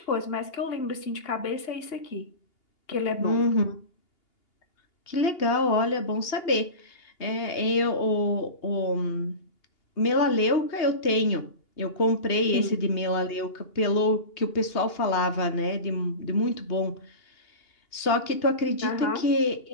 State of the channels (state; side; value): late; right; 2.8 ms